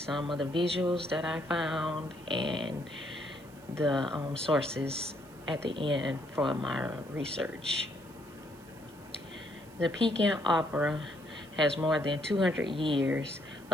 of the visuals that I found and the sources at the end for my research. The Peking Opera has more than 200 years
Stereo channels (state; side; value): noise; right; hiss, 25 dB below the sound